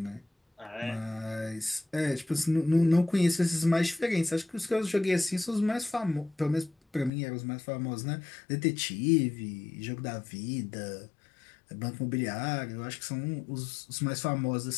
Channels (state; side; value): drops out; right; at 7.1 s